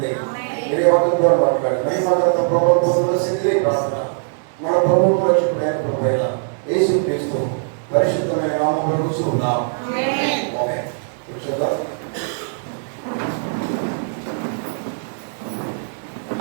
మీరే వాక్యం ద్వారా మాట్లాడండి. మహిమగత ప్రభుత్వంలో శక్తి ప్రార్థన మన ప్రభుత్వ రక్షకుడైన ప్రభు యేసు క్రీస్తు పరిశుద్ధమైన నామములో కూర్చున్నాం. ఆమేన్. కూర్చోదా.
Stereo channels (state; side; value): silent; left; digital silence